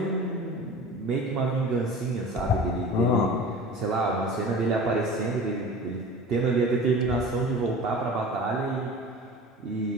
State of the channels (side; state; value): both; normal; correlation 0.37